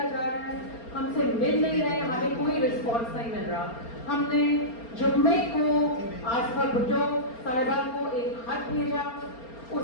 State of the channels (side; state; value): right; late; 4.3 ms